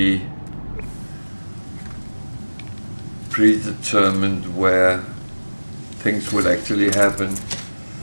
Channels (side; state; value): both; inverted; correlation -1.00